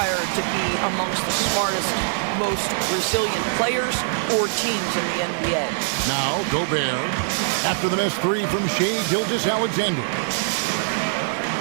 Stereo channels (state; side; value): silent; left; digital silence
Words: to be amongst the smartest, most resilient players or teams in the NBA. Now, Gobert, after the missed 3 from Shai Gilgeous-Alexander.